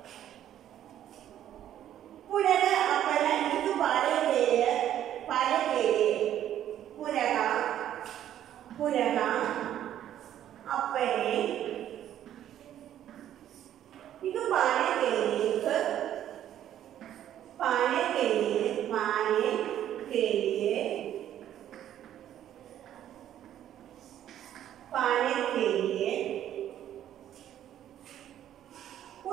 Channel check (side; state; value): left; quieter; 11.3 dB